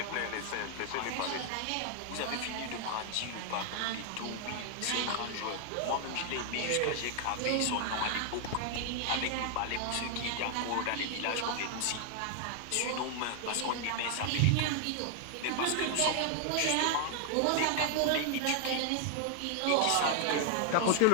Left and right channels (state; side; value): different; both; correlation 0.00